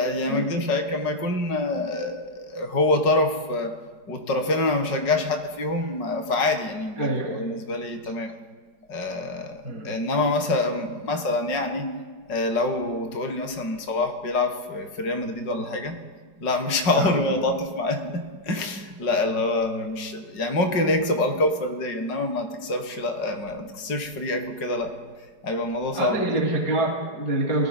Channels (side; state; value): right; late; 4.8 ms